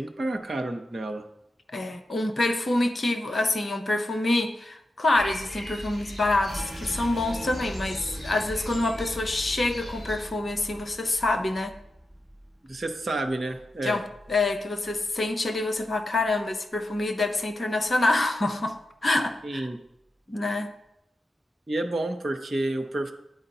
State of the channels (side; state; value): both; normal; correlation 0.89